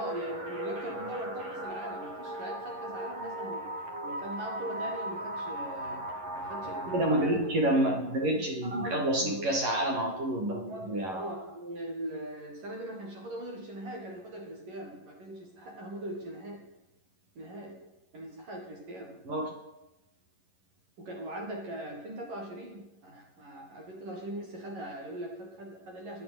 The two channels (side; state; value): left; late; 11 ms